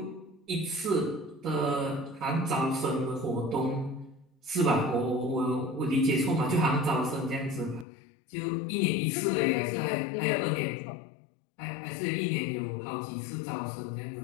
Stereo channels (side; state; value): right; drops out; at 7.9 s